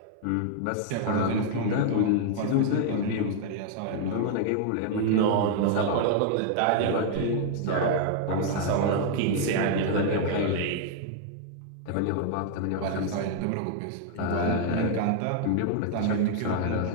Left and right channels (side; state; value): both; different; correlation 0.00